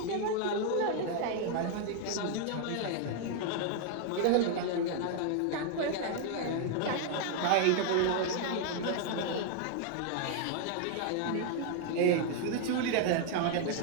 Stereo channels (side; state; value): both; different; correlation 0.00